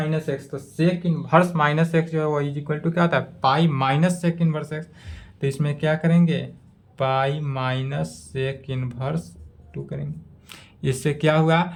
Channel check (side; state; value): both; identical; correlation 1.00